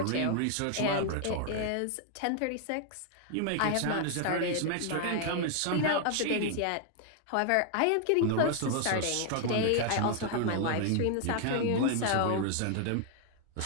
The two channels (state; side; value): different; both; correlation 0.00